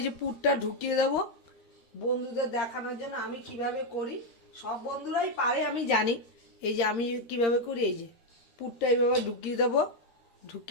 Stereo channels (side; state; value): right; late; 13 ms